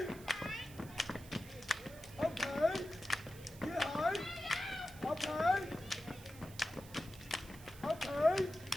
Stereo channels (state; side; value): noise; right; hiss, 19 dB below the sound